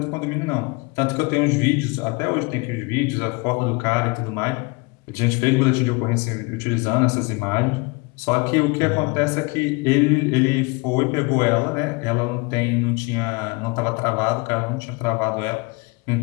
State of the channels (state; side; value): quieter; right; 27.9 dB